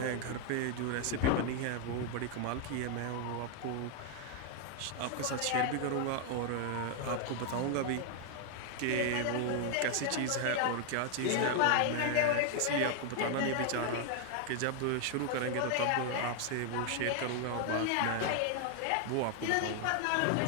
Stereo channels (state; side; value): different; both; correlation 0.00